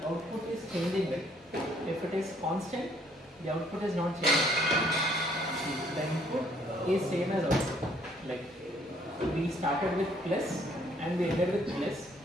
output is changing, right? If it is constant, the output is not changing. The input is same as output. Like we started with plus and we ended with plus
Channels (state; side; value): normal; both; correlation 0.64